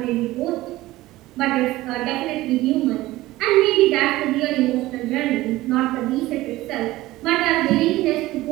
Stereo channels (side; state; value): left; quieter; 17.5 dB